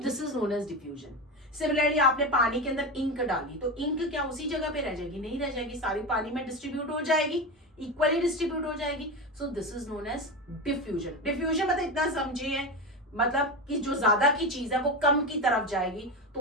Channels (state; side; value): normal; both; correlation 0.20